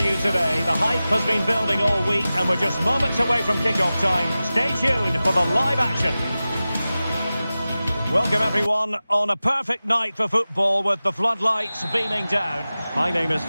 today. The hype has been building all week and we're just moments away from kick-off time. Stay tuned for the live action. Welcome everyone on a perfect night for football with the floodlights beaming down. My name is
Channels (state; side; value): inverted; both; correlation -0.96